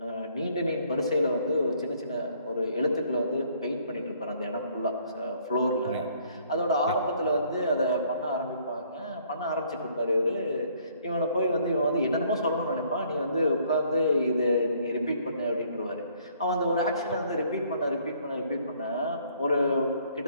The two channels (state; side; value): inverted; both; correlation -0.63